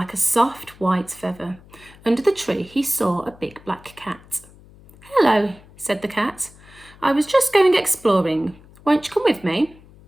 a soft white feather. Under the tree, he saw a big black cat. "Hello," said the cat. "I was just going exploring. Won't you come with me?"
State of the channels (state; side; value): noise; left; hum, 24 dB below the sound